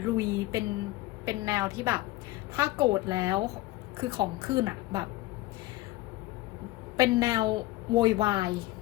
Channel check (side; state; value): right; quieter; 18.2 dB